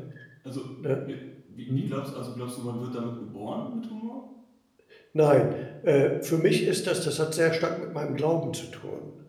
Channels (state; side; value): identical; both; correlation 1.00